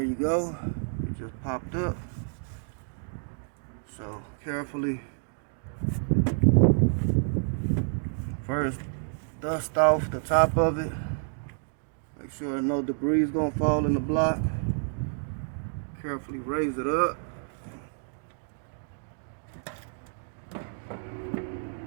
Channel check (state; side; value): silent; left; digital silence